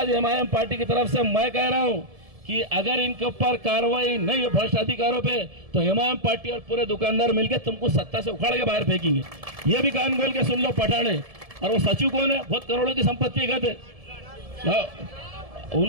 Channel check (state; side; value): late; left; 1.7 ms